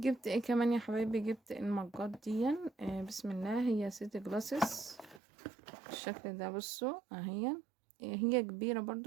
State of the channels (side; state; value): left; drops out; at 5.2 s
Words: ايه كمان يا حبايبي؟ جبت المجات دي. بسم الله، هي سيتي جلاسز الشكل ده. بصوا اهي، هي كبيرة